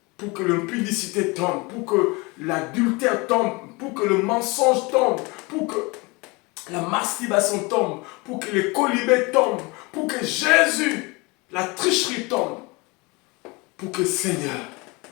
Pour que l'impudicité tombe. Pour que l'adultère tombe. Pour que le mensonge tombe. Pour que la masturbation tombe. Pour que les colibés tombent. Pour que Jésus, la tricherie tombe. Pour que Seigneur,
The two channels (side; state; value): right; quieter; 26.0 dB